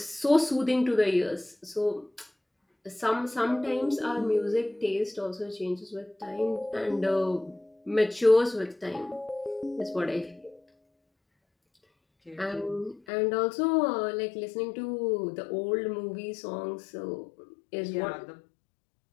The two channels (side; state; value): right; drops out; at 13.0 s